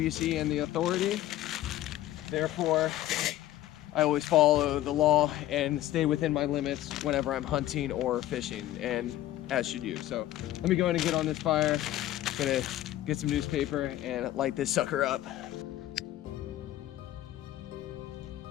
and the authority. Therefore, I always follow the law and stay within my limits whenever I'm hunting or fishing, and as should you. So let me go ahead and get on this fire. Gonna get some newspaper and light this sucker up.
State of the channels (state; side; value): quieter; right; 14.2 dB